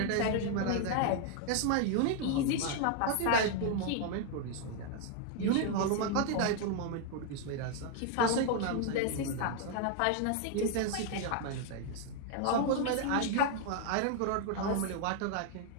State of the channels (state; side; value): different; both; correlation 0.00